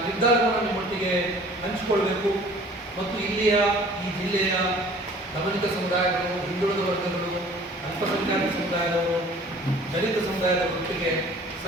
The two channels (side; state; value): both; normal; correlation 0.50